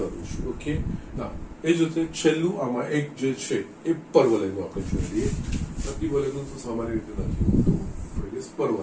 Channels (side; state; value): both; identical; correlation 1.00